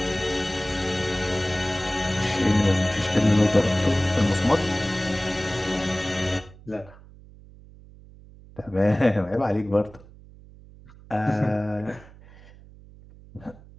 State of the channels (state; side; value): noise; right; hum, 22 dB below the sound